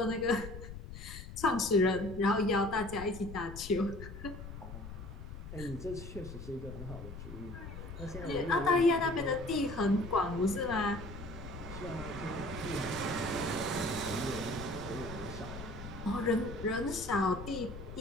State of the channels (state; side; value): noise; left; rumble, 11 dB below the sound